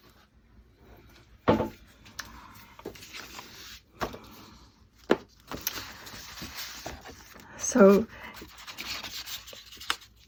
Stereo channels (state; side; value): identical; both; correlation 1.00